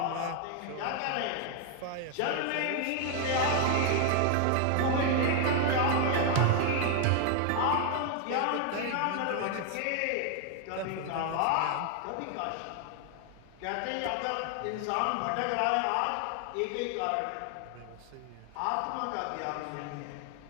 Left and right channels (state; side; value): different; both; correlation 0.00